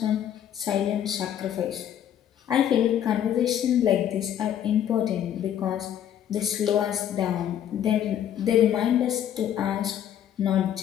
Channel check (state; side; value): quieter; right; 10.2 dB